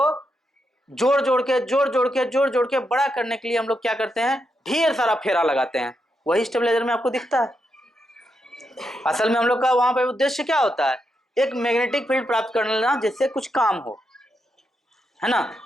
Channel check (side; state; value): both; normal; correlation 0.83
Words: जोड़ जोड़ के बड़ा करने के लिए हम लोग क्या करते हैं, ढेर सारा फेरा लगाते हैं। वही स्टेबलाइजर में आपको दिखता है। असल में हम लोग का वहां पे उद्देश्य क्या होता है, एक मैग्नेटिक फील्ड प्राप्त कर लेना जिससे कुछ काम हो, है ना।